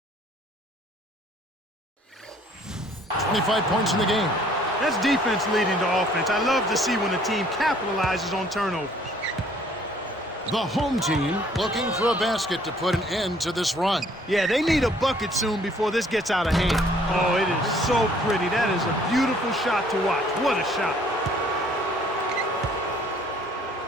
25 points in the game. That's defense leading to offense. I love to see when a team capitalizes on turnovers. The home team looking for a basket to put an end to this run. Yeah, they need a bucket soon before this gets out of hand. Oh, it is so pretty. That is a beautiful shot to watch. What a shot.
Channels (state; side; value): normal; both; correlation 0.59